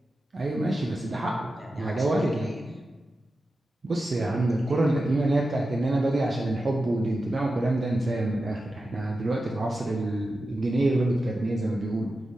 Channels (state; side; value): normal; both; correlation 0.92